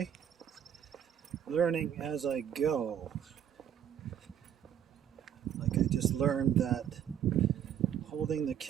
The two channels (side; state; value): left; quieter; 9.4 dB